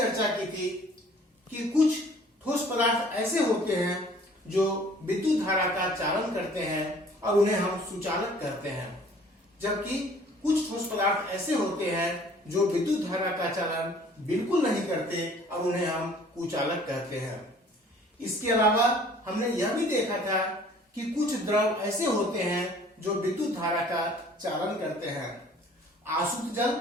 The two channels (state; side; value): normal; both; correlation 0.53